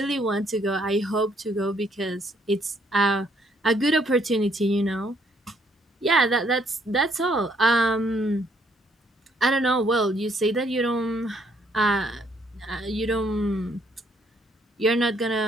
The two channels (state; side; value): normal; both; correlation 0.68